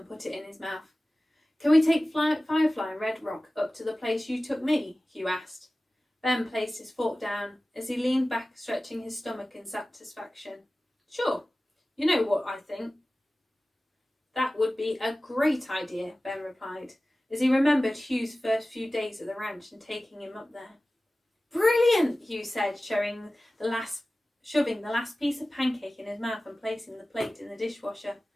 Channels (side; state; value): both; normal; correlation 0.97